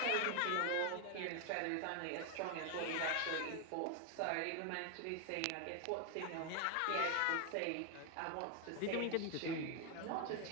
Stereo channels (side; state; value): both; different; correlation 0.00